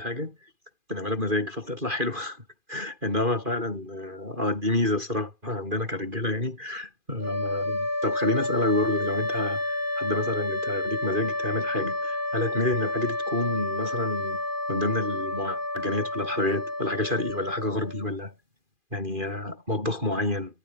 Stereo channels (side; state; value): left; late; 2.4 ms